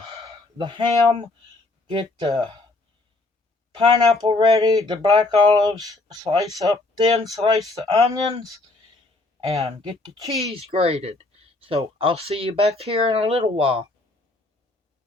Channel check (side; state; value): right; quieter; 3.1 dB